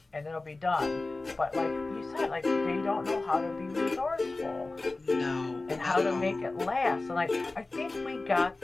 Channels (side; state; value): right; quieter; 3.2 dB